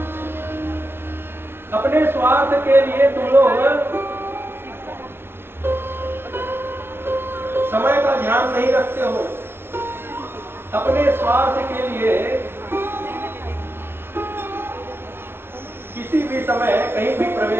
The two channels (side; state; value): left; late; 0.11 ms